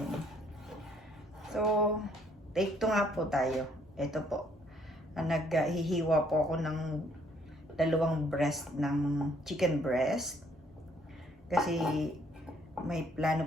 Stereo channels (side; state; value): both; normal; correlation 0.65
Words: So, take two nga po tayo. Ito po. Naghihiwa po ako ng dalawang breast ng chicken breast. Kasi may plano